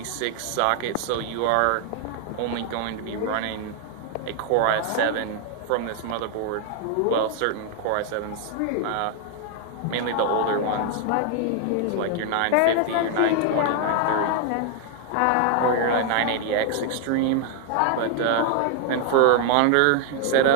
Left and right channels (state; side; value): different; both; correlation 0.00